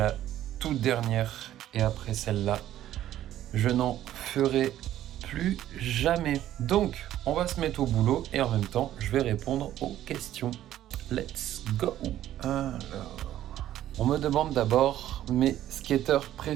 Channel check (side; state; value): left; quieter; 12.6 dB